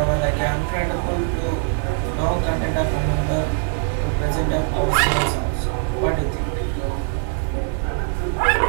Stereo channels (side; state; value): left; silent; 56 dB below the other